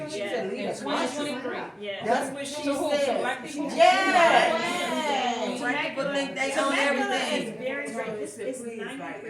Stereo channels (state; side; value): identical; both; correlation 1.00